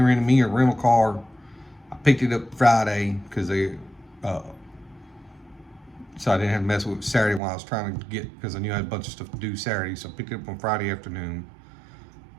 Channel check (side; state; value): left; drops out; at 7.4 s